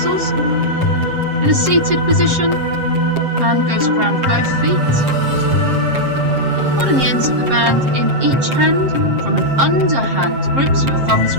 In a seated position, band goes around both feet. Holding the ends of the band in each hand from an underhand grip, so your thumbs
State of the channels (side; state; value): left; late; 7.5 ms